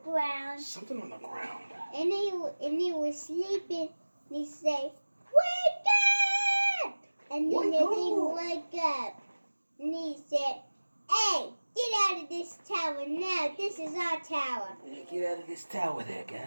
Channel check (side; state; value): both; inverted; correlation -1.00